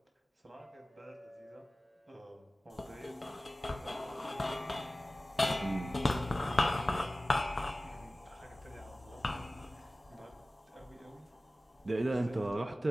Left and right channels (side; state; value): both; normal; correlation 0.97